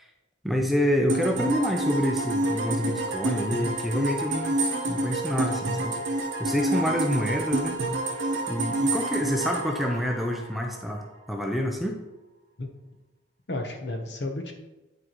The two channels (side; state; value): both; normal; correlation 0.59